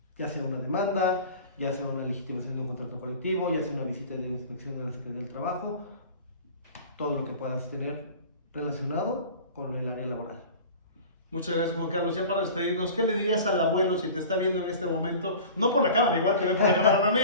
ya sea una demanda, ya sea una legitimación de un contrato colectivo, ya sea una visita de inspección de la Secretaría del Trabajo, todo lo que puedas tener relacionado con el área laboral. Muchas gracias, Juan Carlos. Ya para despedirnos, ¿qué le dirías al abuelo si te está viendo en este momento? No por la cámara, igual te ve por la cámara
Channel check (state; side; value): inverted; both; correlation -0.40